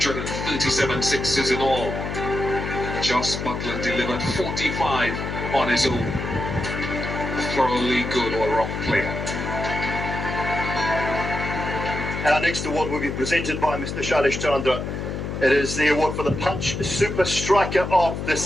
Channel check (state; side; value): noise; left; hum, 5 dB below the sound